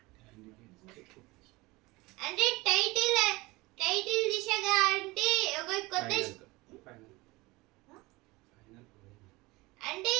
అంటే టైటిల్ దిశగా అంటే ఒక కొత్త అంటే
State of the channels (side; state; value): left; quieter; 22.1 dB